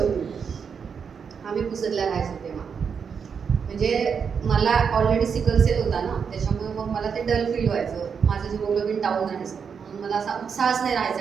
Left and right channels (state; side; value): quieter; left; 6.5 dB